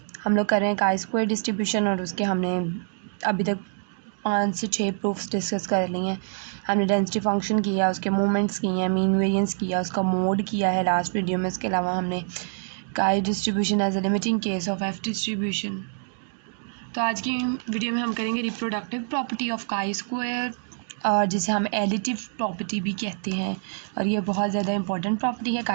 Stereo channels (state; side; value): silent; left; digital silence